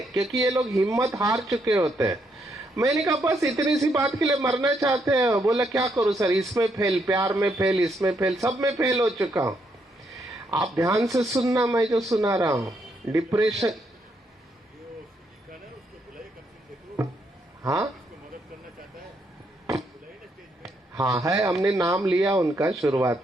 क्योंकि ये लोग हिम्मत हार चुके होते हैं। मैंने कहा बस इतनी सी बात के लिए मरना चाहते हैं? बोला क्या करूं सर, इसमें फेल, प्यार में फेल, इसमें फेल, सब में फेल हो चुका हूं। आप ध्यान से सुनना मैं जो सुना रहा हूं। डिप्रेशन, हाँ हाँ है, हमने नाम लिया उनका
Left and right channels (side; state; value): both; normal; correlation 0.76